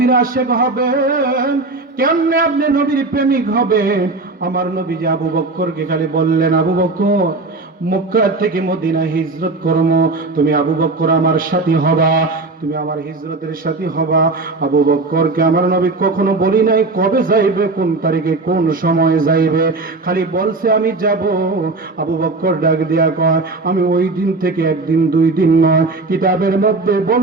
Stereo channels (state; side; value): quieter; left; 3.5 dB